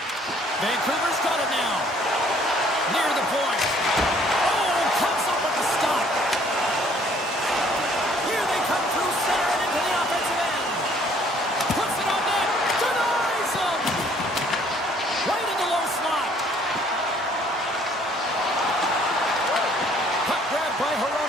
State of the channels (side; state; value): both; normal; correlation 0.60